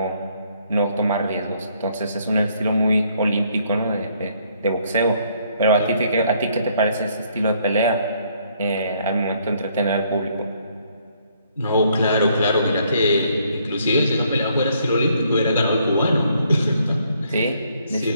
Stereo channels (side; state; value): both; inverted; correlation -0.68